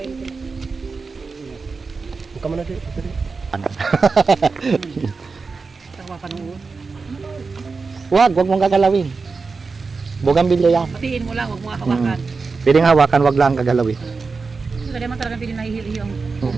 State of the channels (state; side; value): quieter; left; 4.5 dB